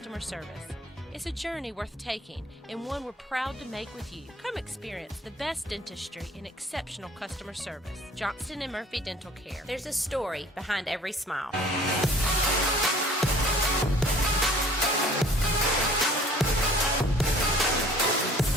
service. It's a journey worth taking and one we're proud to make with you. Come experience the best dentistry and exceptional customer service. Johnston and Murphy Dental Care. There's a story behind every smile.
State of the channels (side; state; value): both; normal; correlation 0.51